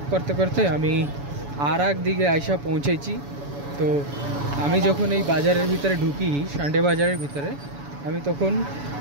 করতে করতে আমি আর এক দিকে আইসা পৌঁছেছি। তো আমি যখন এই বাজারের ভিতরে ঢুকি, সানডে বাজারের ভিতরে, আমি তখন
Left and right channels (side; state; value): left; late; 7.0 ms